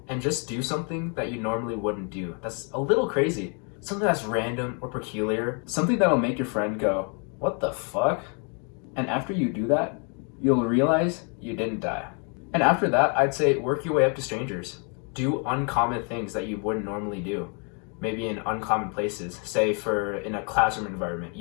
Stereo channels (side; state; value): right; quieter; 38.4 dB